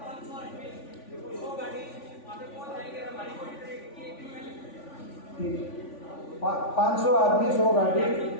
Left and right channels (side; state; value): right; late; 3.5 ms